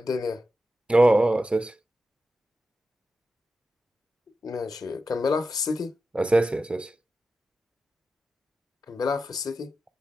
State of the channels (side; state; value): both; normal; correlation 0.91